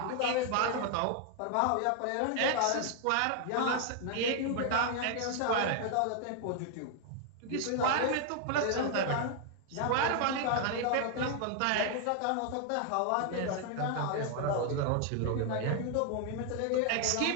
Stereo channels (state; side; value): different; both; correlation 0.00